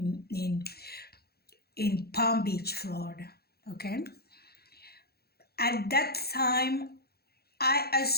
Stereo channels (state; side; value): late; right; 0.46 ms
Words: in Palm Beach, Florida, okay? At that time, I